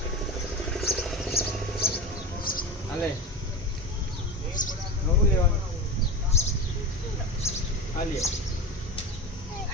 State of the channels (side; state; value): both; normal; correlation 0.26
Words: હાલે નવું લેવાનું હાલીએ